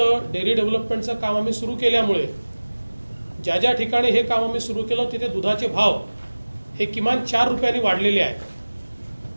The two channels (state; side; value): inverted; both; correlation -1.00